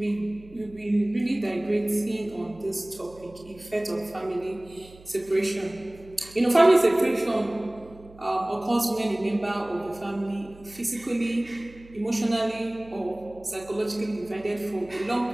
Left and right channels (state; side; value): noise; right; hum, 22 dB below the sound